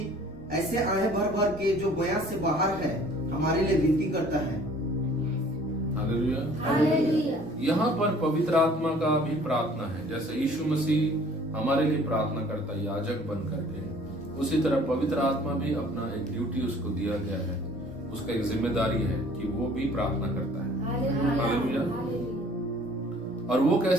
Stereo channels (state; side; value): normal; both; correlation 0.53